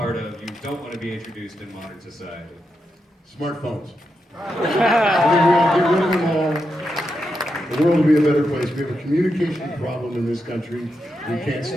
of, you don't want to be introduced in modern society? Smartphones. I think we ought to get rid of them all. The world will be a better place. We have a communication problem in this country. We can't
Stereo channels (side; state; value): both; normal; correlation 0.85